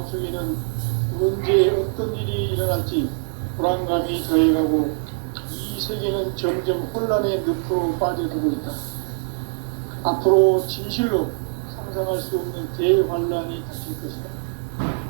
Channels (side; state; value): left; silent; digital silence